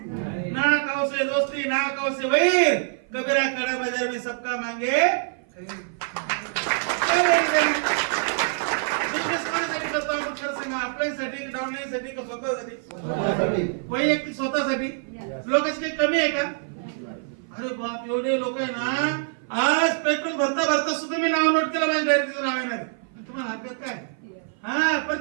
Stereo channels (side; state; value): left; silent; 55 dB below the other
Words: ना कौसे दोस्ती ना कौसे वैर कबीरा कड़ा बाजार में सबका मांगे. आपल्यासाठी डाऊनसाठी का स्वतःसाठी वैयक्तिक स्वतःसाठी. लोकांची काही कमी आहे का. अरे बाप एवढे लोक आहे ना आज पेट्रोल भरता भरता सुद्धा मी नाव नोट केलं माझ्या डायरेक्टचं नाव येणार. तुम्हाला हरकत काय. हा